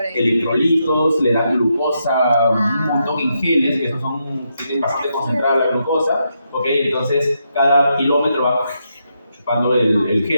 Electrolitos, le dan glucosa, un montón en geles, que esos tienen bastante concentrada la glucosa, ¿ok? Entonces cada kilómetro va chupando el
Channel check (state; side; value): inverted; both; correlation -0.82